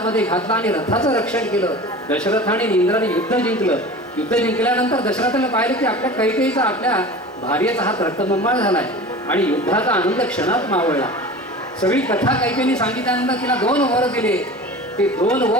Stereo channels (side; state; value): both; normal; correlation 0.36